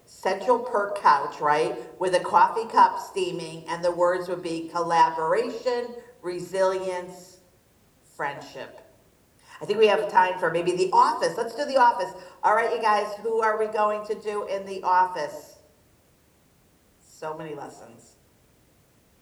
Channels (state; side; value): identical; both; correlation 1.00